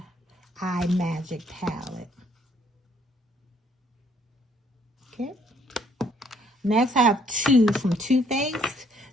Eye Magic palette. Okay. Next, I have 2 from Too Faced.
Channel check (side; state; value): both; normal; correlation 0.65